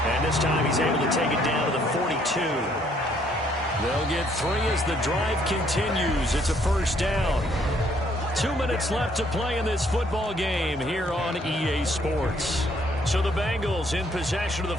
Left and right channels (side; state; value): both; normal; correlation 0.66